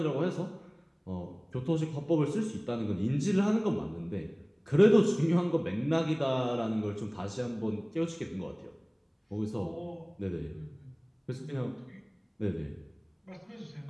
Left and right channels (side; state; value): both; identical; correlation 1.00